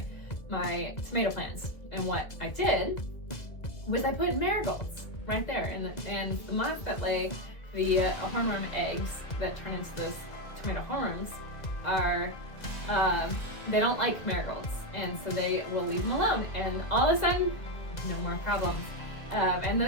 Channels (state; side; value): late; right; 2.0 ms